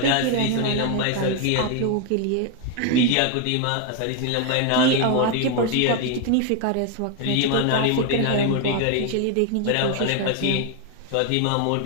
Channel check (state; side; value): different; both; correlation 0.01